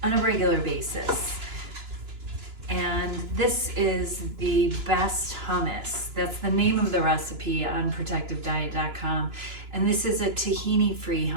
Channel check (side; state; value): left; late; 2.9 ms